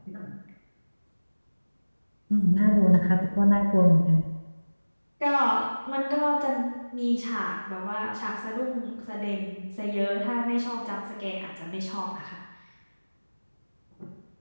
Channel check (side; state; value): both; inverted; correlation -1.00